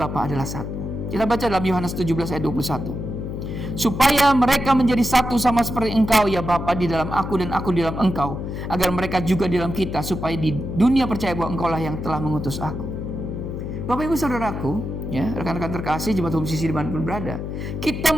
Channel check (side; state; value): left; noise; hum, 5 dB below the sound